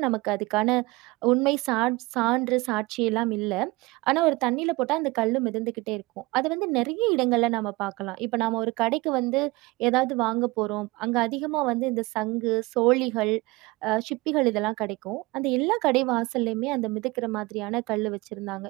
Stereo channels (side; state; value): left; quieter; 22.3 dB